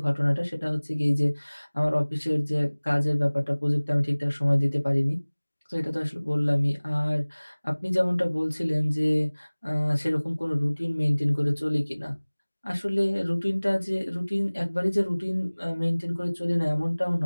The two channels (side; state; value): both; inverted; correlation -1.00